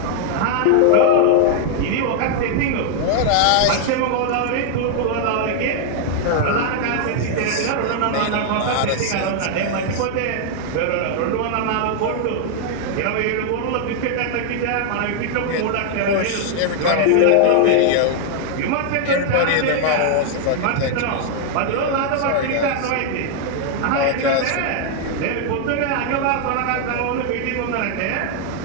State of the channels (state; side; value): different; both; correlation 0.00